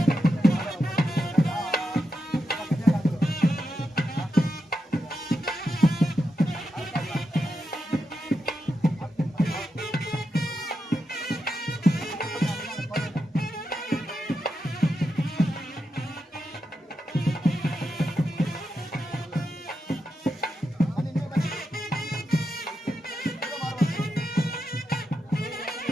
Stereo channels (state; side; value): normal; both; correlation 0.87